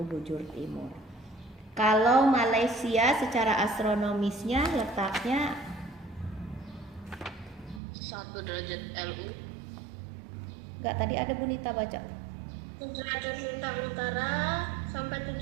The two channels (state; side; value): drops out; left; at 7.8 s